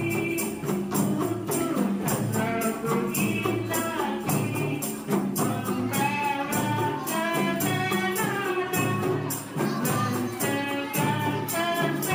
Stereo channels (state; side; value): identical; both; correlation 1.00